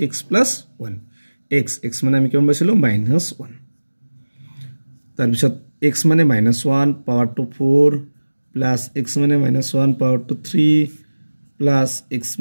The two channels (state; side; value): inverted; both; correlation -1.00